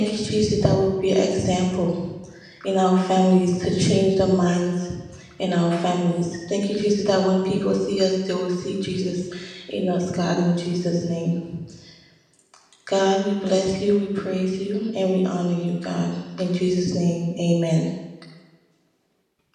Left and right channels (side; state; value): both; identical; correlation 1.00